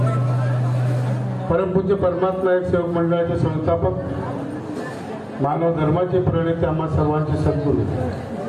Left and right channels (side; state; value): both; identical; correlation 1.00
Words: परमपूज्य परमात्मा एक सेवक मंडळाचे संस्थापक मानव धर्माचे प्रणेते आम्हा सर्वांचे सद्गुरू